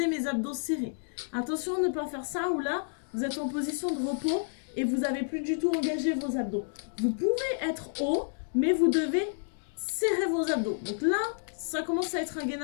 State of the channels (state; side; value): silent; right; digital silence